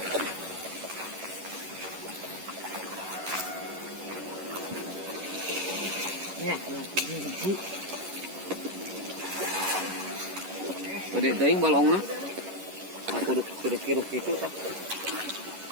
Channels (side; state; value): left; late; 11 ms